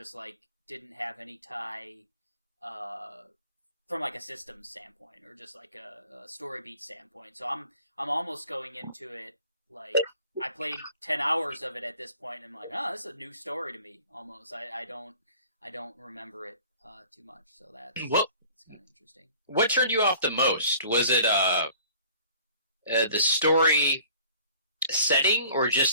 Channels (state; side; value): inverted; both; correlation -0.50